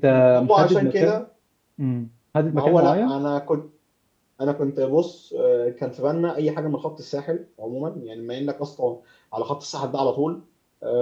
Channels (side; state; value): both; identical; correlation 1.00